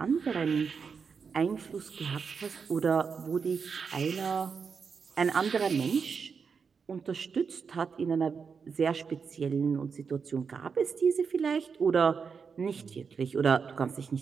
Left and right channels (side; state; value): left; quieter; 5.8 dB